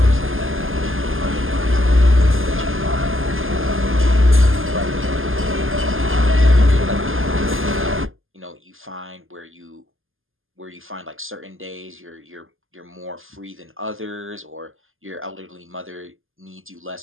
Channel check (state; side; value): late; left; 0.59 ms